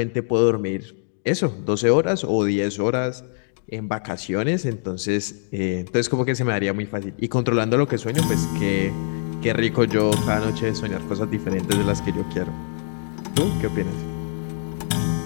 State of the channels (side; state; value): right; silent; digital silence